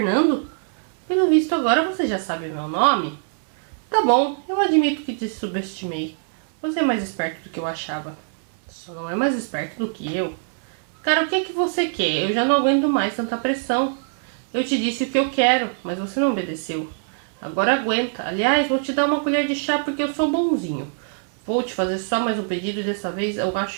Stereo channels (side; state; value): left; silent; 63 dB below the other